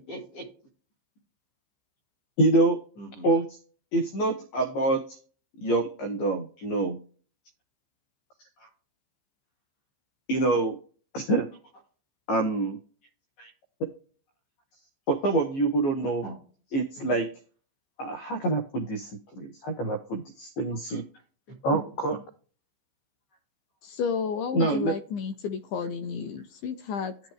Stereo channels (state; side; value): late; right; 15 ms